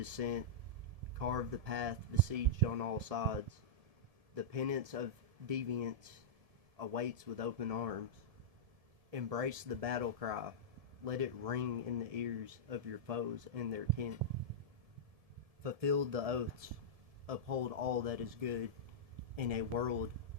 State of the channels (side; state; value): left; late; 1.7 ms